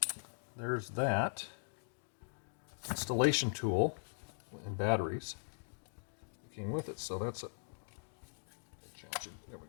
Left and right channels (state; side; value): silent; right; digital silence